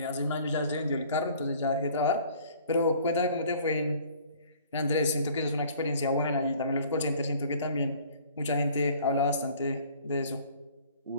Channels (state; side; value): inverted; both; correlation -0.53